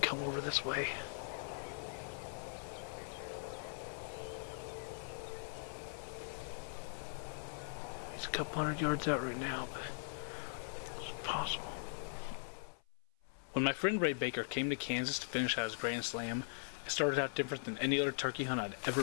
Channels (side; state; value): right; silent; 51 dB below the other